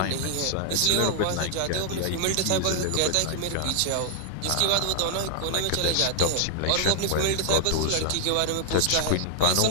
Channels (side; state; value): both; different; correlation 0.00